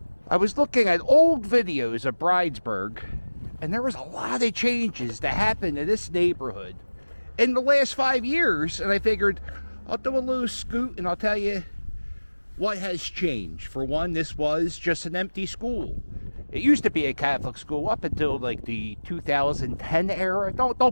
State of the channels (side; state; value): both; inverted; correlation -1.00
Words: I was looking at old videos of Bridesburg, and there was a lot of changes that happened in this neighborhood in the last 5 years. And I figured I'll do a little scoot and I'll tell you what has changed. For one, this was just an empty school. It used to be a Catholic school up until like the 2010 era.